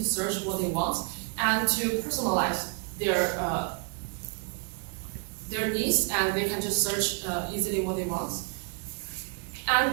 search what they want and to personalize their needs, and they can just search easily what they want. And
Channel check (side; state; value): left; quieter; 37.2 dB